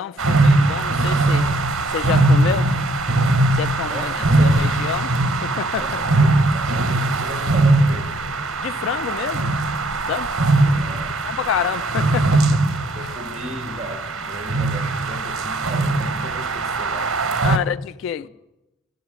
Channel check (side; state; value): both; normal; correlation 0.64